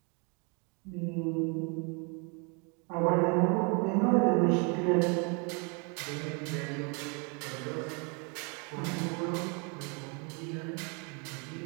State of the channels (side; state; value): left; quieter; 34.2 dB